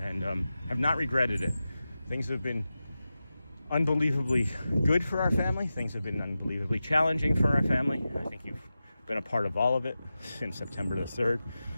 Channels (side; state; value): both; inverted; correlation -0.93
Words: and have not regretted it. Things have been unbelievably good for our family. Things have been unbelievably challenging for our family. I think you've been a part of all of it since September the 3rd,